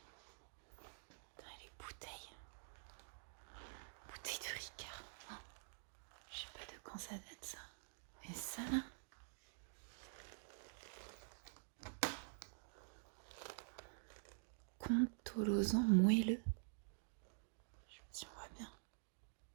Putain, les bouteilles. Bouteilles de Ricard. Oh. Je sais pas de quand ça date ça. Et ça là. Contolosan moelleux. Je sais pas si on voit bien.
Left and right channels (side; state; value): left; silent; digital silence